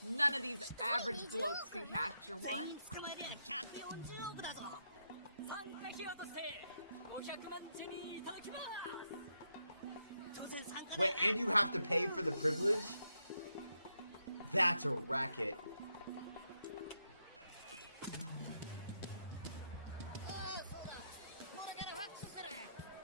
None of these average blokes can capture 全 one. 員捕まえりゃ140億だぞ。参加費用として500万ジェリーいただきます。当然参加 Wait, and you have to pay for the privilege? That's a racket. おい、そうだ。これからファックスする。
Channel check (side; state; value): both; inverted; correlation -0.81